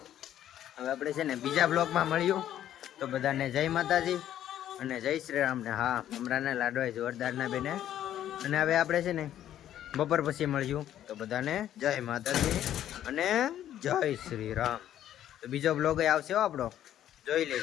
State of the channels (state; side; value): quieter; right; 11.5 dB